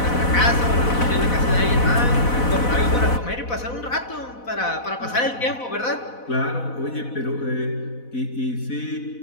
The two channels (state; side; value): late; right; 4.1 ms